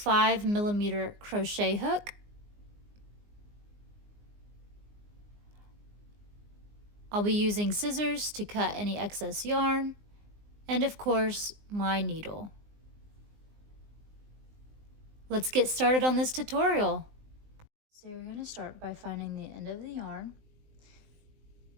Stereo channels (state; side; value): late; left; 19 ms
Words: crochet hook. I'll be using scissors to cut any excess yarn, and of course, my needle. Let's get started on this tutorial. So you're going to start by finding the end of the yarn.